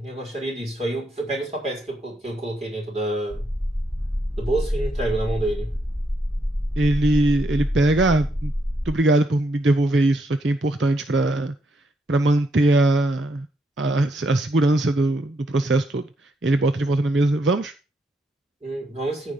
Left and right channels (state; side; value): normal; both; correlation 0.77